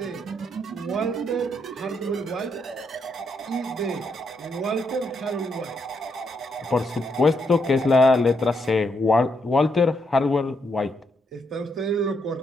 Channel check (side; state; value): both; normal; correlation 0.78